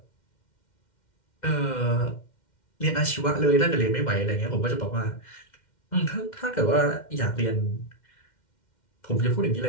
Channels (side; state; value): right; late; 2.1 ms